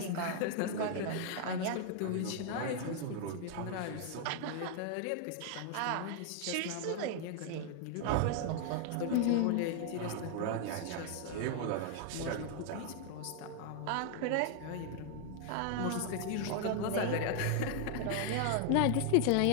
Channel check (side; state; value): both; different; correlation 0.00